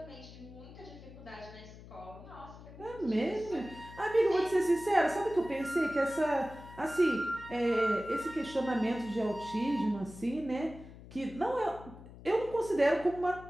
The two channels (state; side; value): noise; left; hum, 17 dB below the sound